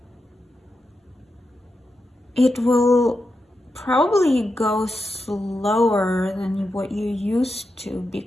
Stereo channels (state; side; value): normal; both; correlation 0.88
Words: It will probably go slower than what you used to,